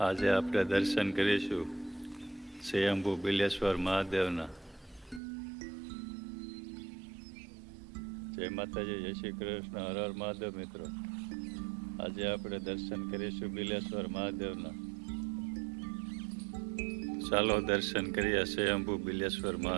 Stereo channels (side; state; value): left; drops out; at 5.2 s